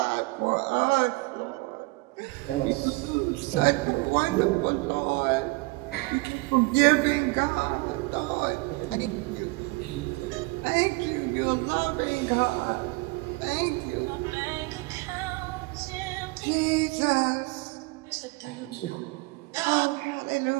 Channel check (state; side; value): quieter; left; 24.8 dB